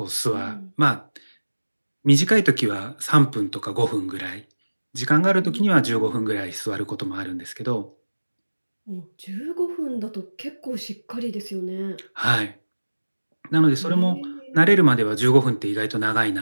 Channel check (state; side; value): inverted; both; correlation -1.00